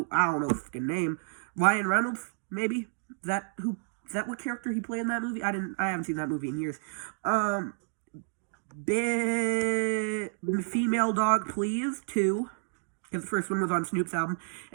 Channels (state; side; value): silent; left; digital silence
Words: I don't know the fucking name, Ryan Reynolds, maybe? Is that what character he played in that movie? I haven't seen that movie in years. Female Dog Please 2. Because the first one was on Snoop's album,